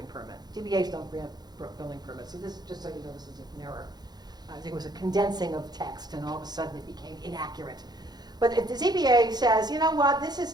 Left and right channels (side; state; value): left; late; 0.20 ms